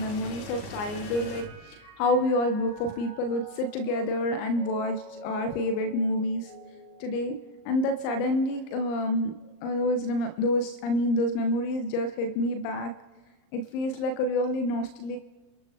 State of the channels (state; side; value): late; right; 38 ms